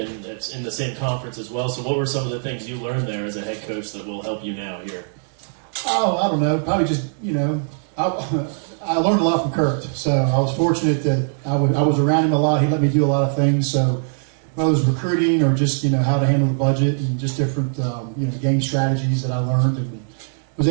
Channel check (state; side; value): silent; left; 64 dB below the other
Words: it's in the same conference as well. So what were some of the things you learned there as a head coach that will help you now here? Oh, I don't know. Probably just, I learned a lot from Kurt. So I was fortunate that I was around him a lot. He let me do a lot of things. So whether it was recruiting or just, how to handle the budget and just different, game strategies that I learned and was